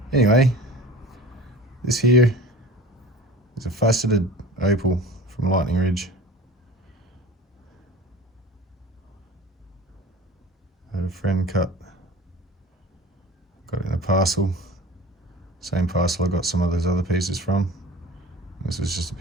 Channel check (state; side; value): normal; both; correlation 0.39